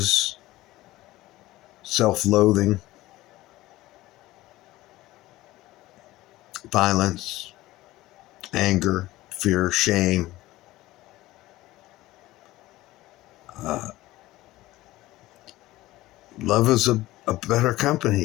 self-loathing, violence, anger, fear, shame. Love is a better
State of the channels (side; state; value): right; quieter; 17.4 dB